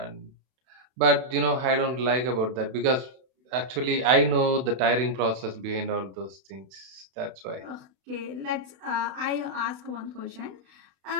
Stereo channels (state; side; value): late; left; 32 ms